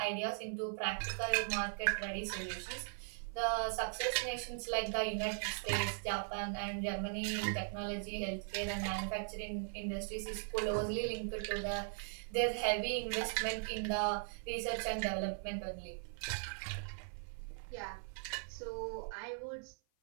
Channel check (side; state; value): left; silent; 52 dB below the other